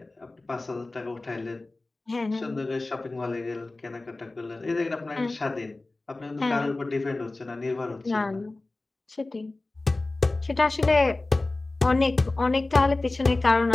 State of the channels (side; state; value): right; quieter; 3.1 dB